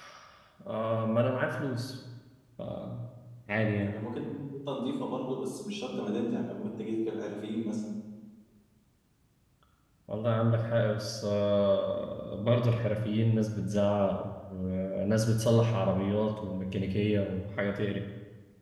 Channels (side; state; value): both; identical; correlation 1.00